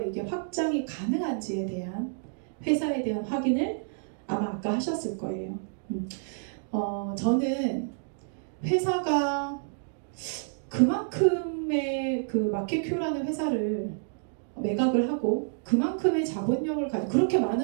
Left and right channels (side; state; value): left; silent; digital silence